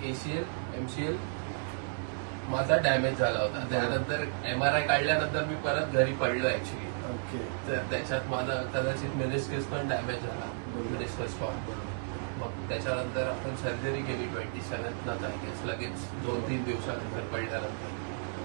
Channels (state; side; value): silent; left; digital silence